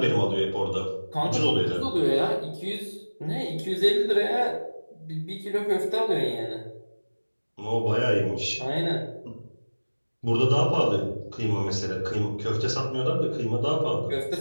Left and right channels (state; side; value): inverted; both; correlation -1.00